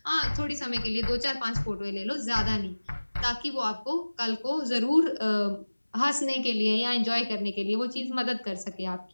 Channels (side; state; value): both; inverted; correlation -1.00